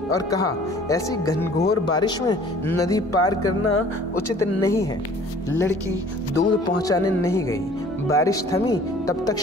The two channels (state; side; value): normal; both; correlation 0.51